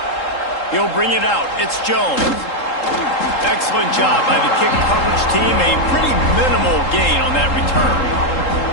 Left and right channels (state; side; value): late; right; 3.8 ms